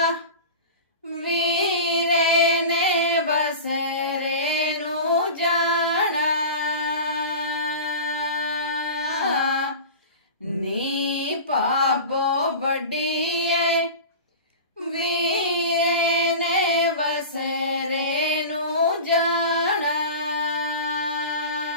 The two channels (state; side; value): inverted; both; correlation -0.32